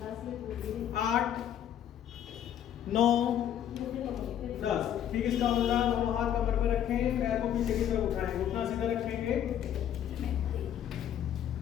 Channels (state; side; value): quieter; right; 10.2 dB